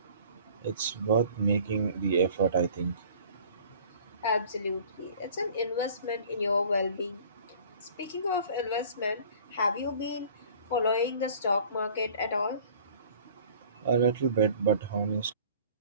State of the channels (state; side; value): inverted; both; correlation -0.49